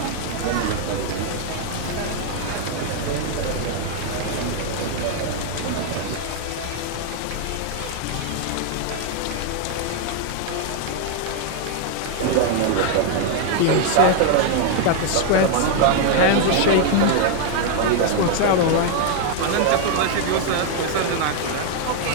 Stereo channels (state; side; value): different; both; correlation 0.00